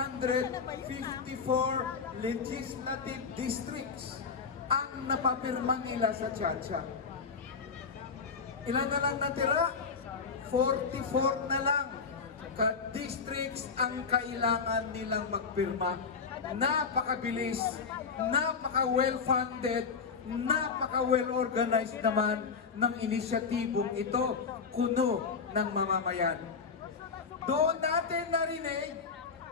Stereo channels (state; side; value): quieter; right; 5.4 dB